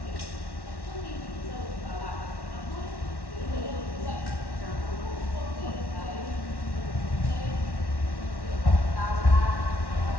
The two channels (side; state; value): right; late; 1.1 ms